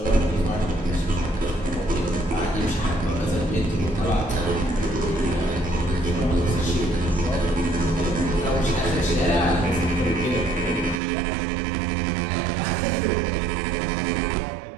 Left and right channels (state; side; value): drops out; left; at 11.0 s